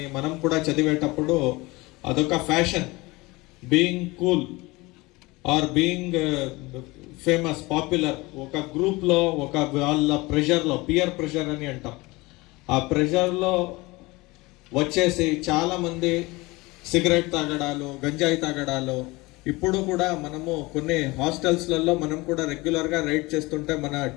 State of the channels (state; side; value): quieter; right; 22.6 dB